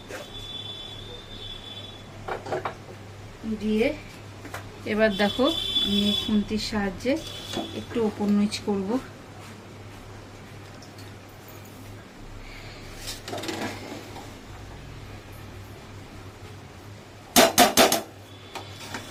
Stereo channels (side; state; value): both; identical; correlation 1.00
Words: দিয়ে এবার দেখো, আমি খুন্তির সাহায্যে একটু ওপর নিচ করব।